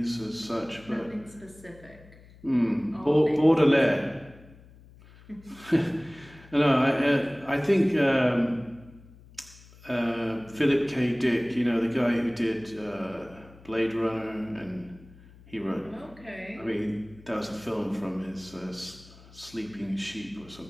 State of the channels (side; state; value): left; noise; hum, 23 dB below the sound